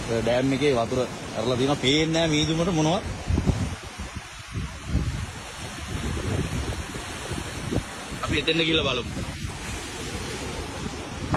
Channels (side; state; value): both; identical; correlation 1.00